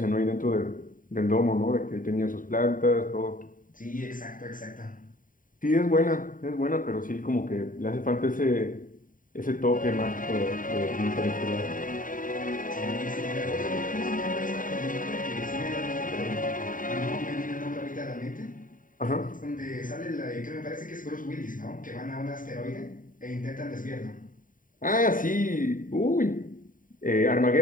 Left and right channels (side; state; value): right; late; 0.39 ms